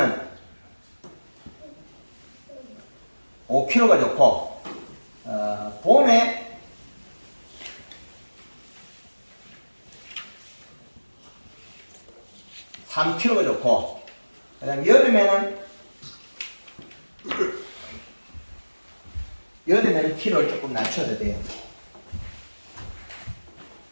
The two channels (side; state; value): both; inverted; correlation -1.00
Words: 5kg가 좋고 봄에 3kg가 좋고 그다음 여름에는 키로를 조금 낮춰도 돼요.